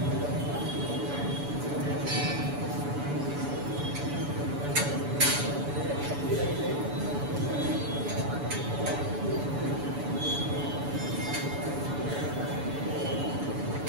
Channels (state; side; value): late; left; 7.0 ms